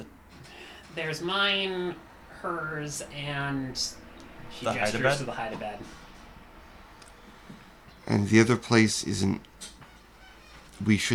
There's mine, hers, and She The gestures hide-a-bed? to the hide-a-bed. And the other place isn't... We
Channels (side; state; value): both; identical; correlation 1.00